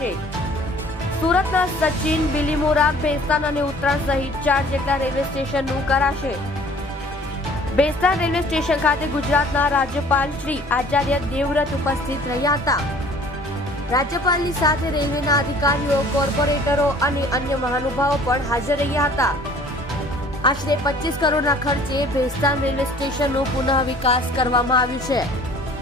સુરતના સચિન, બિલીમોરા, ભેસ્તાન અને ઉત્તરાણ સહિત 4 જેટલા રેલવે સ્ટેશનનું કરાશે। ભેસ્તાન રેલવે સ્ટેશન ખાતે ગુજરાતના રાજ્યપાલ શ્રી આચાર્ય દેવવ્રત ઉપસ્થિત રહ્યા હતા। રાજ્યપાલની સાથે રેલવેના અધિકારીઓ, કોર્પોરેટરો અને અન્ય મહાનુભાવો પણ હાજર રહ્યા હતા। આશરે 25 કરોડના ખર્ચે ભેસ્તાન રેલવે સ્ટેશનનો પુનઃ વિકાસ કરવામાં આવ્યું છે।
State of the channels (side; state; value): both; normal; correlation 0.52